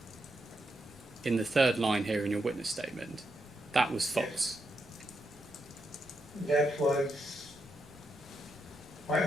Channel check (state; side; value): normal; both; correlation 0.82